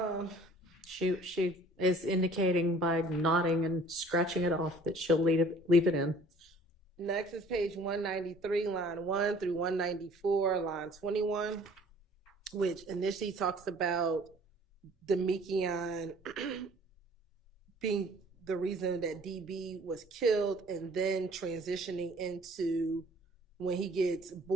She is indicating by nodding and scratching it off that she'll leave it in. Next is page 193, line 1 through 194, line 21, which initially talks about Demekion being the reason that DB was killed, and then transitioning into when he gets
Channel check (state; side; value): normal; both; correlation 0.52